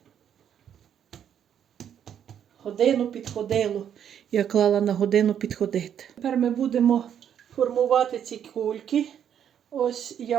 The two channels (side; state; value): left; quieter; 9.1 dB